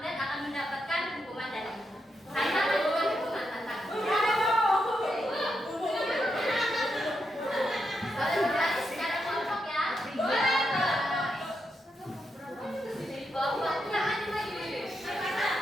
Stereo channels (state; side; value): normal; both; correlation 0.83